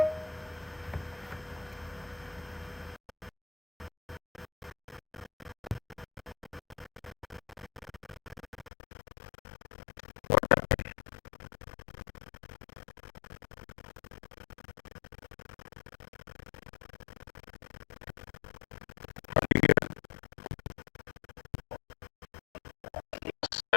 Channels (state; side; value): drops out; right; at 8.7 s